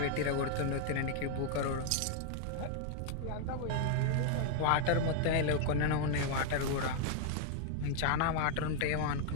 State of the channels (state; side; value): different; both; correlation 0.00